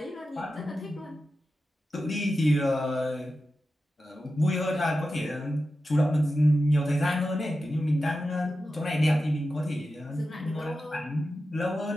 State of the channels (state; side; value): normal; both; correlation 0.92